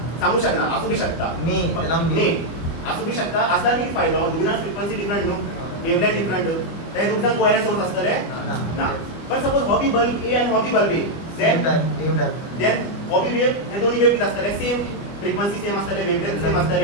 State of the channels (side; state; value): right; late; 25 ms